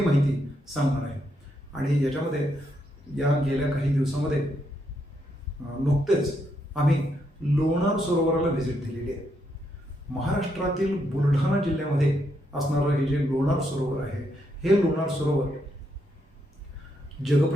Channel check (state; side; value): normal; both; correlation 0.78